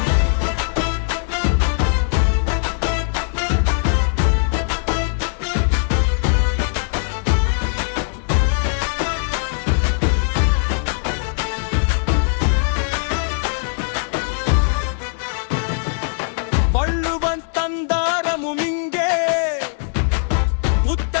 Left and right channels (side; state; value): right; silent; 66 dB below the other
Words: வள்ளுவன் தந்தாரமும் இங்கே,